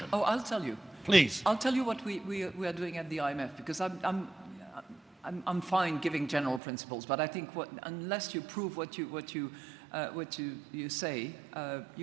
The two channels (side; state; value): left; drops out; at 6.6 s